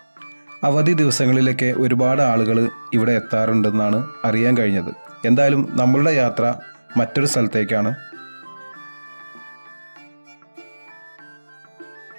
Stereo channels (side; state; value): both; inverted; correlation -1.00